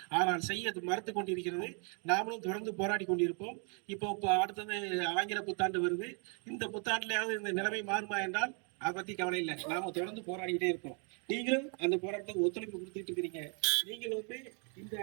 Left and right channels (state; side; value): quieter; left; 38.6 dB